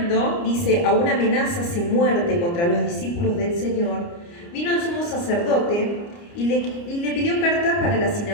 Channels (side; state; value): right; late; 29 ms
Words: dice, a una amenaza sin muerte contra los discípulos del Señor, vino al sumo sacerdote y le pidió cartas para las